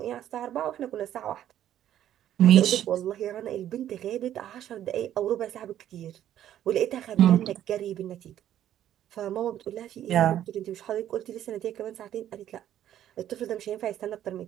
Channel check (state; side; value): quieter; left; 11.4 dB